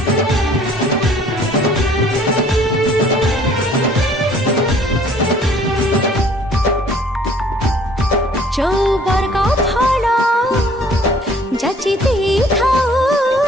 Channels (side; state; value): both; normal; correlation 0.56